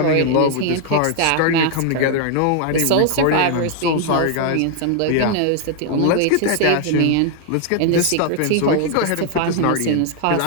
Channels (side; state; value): both; different; correlation 0.00